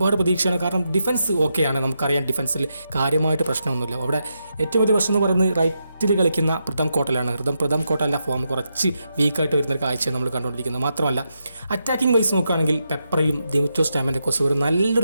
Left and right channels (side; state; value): both; inverted; correlation -0.85